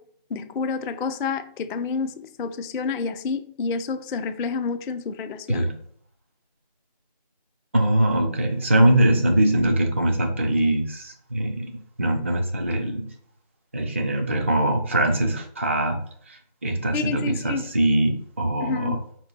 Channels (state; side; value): inverted; both; correlation -0.75